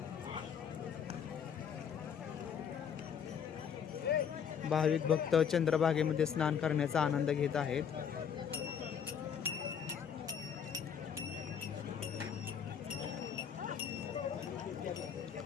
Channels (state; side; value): quieter; right; 7.7 dB